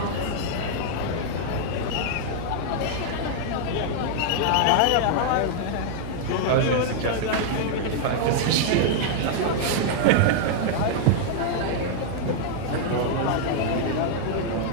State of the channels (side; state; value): both; different; correlation -0.01